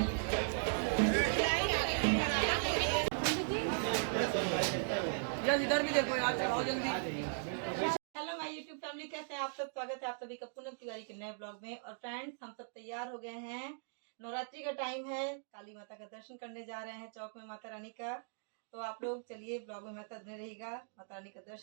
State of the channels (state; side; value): silent; left; digital silence